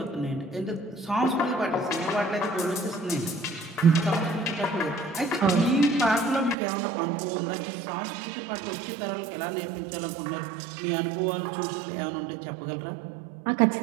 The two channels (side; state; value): left; drops out; at 6.6 s